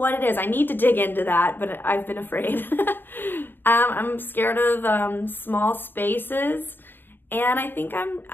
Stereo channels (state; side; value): late; right; 0.096 ms